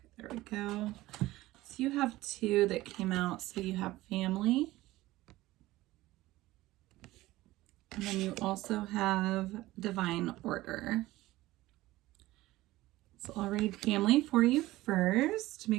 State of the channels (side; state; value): left; quieter; 17.5 dB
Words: there we go. So you have two that came out. So you have family. And then you also have divine order. So I'll read family for you first to